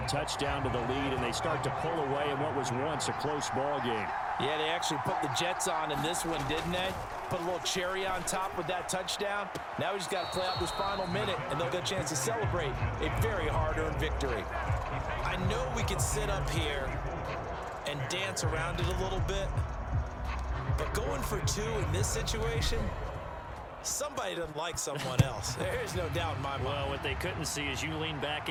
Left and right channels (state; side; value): identical; both; correlation 1.00